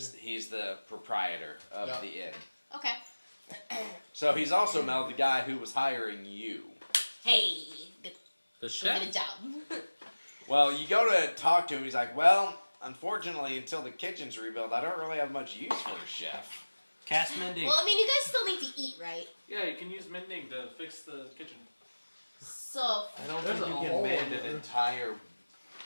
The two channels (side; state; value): both; inverted; correlation -1.00